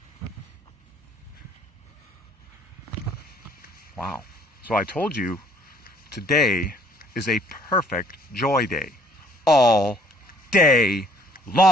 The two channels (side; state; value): both; normal; correlation 0.60